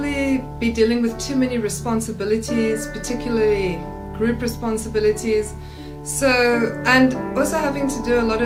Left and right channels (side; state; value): both; identical; correlation 1.00